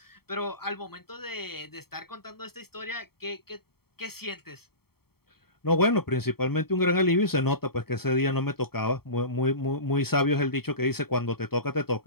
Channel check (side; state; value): right; late; 0.95 ms